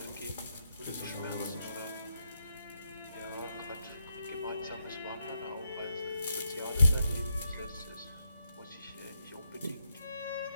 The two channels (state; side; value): inverted; both; correlation -0.81